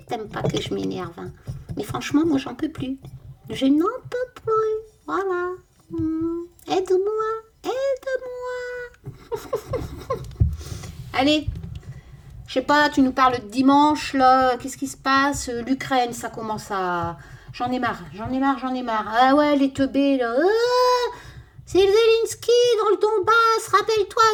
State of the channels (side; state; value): both; identical; correlation 1.00